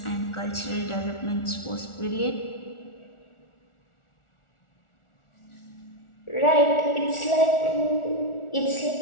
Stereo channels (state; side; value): late; right; 1.4 ms